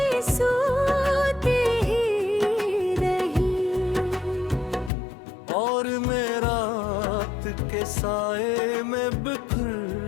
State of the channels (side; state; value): right; drops out; at 4.9 s